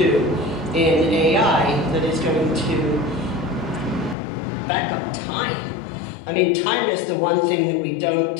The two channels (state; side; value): drops out; right; at 4.2 s